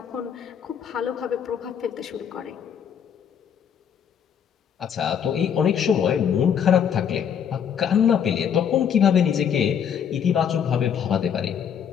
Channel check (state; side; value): quieter; right; 8.2 dB